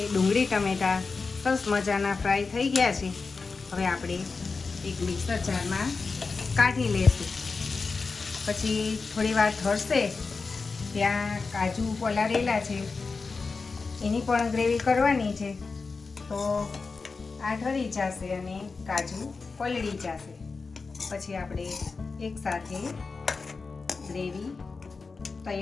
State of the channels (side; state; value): right; quieter; 4.4 dB